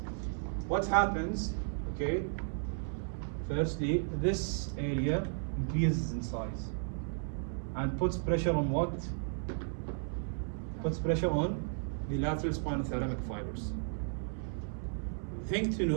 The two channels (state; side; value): silent; left; 55 dB below the other